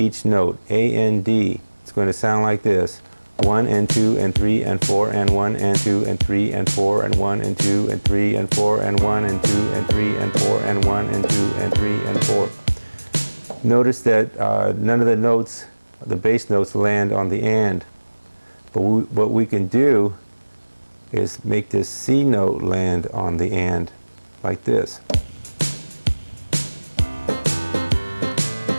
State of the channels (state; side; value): inverted; both; correlation -1.00